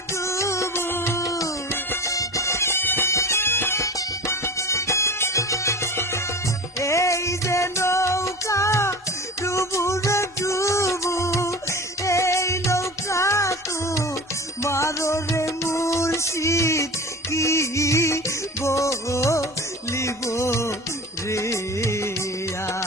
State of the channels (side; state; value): both; normal; correlation 0.34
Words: ডুবু, এই যে নৌকা ডুবু রে ডুবু, এই নৌকা তো মারো রে মুর্শিদ, কি বলিব রে